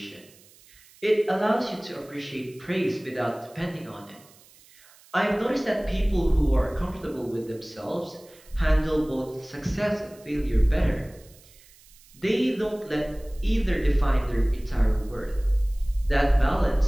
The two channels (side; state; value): right; noise; hiss, 26 dB below the sound